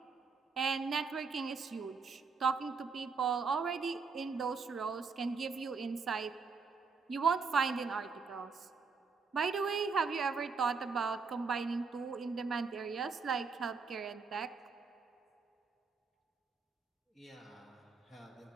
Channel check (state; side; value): quieter; left; 5.0 dB